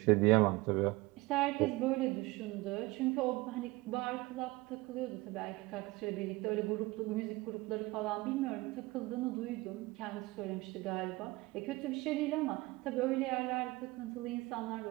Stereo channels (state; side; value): quieter; left; 21.8 dB